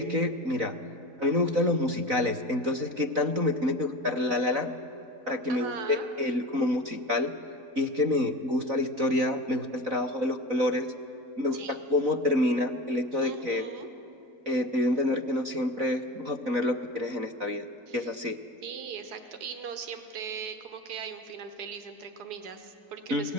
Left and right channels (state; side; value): late; left; 4.0 ms